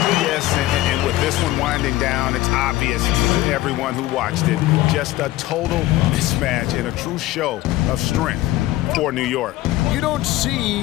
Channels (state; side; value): quieter; right; 16.1 dB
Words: and with this one winding down, it's obvious to everyone who watched it. Just a total mismatch and a true show of strength for New York. You don't